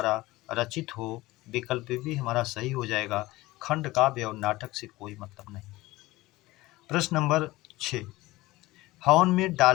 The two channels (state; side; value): quieter; right; 19.2 dB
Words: रचित हो। विकल्प भी हमारा सही हो जाएगा, खंड काव्य और नाटक से कोई मतलब नहीं। प्रश्न नंबर 6, हवन में